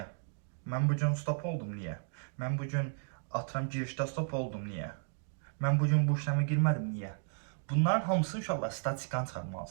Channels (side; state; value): left; silent; digital silence